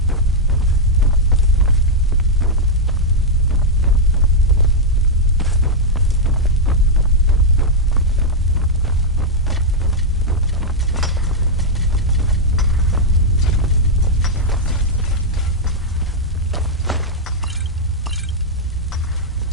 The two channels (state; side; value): normal; both; correlation -0.03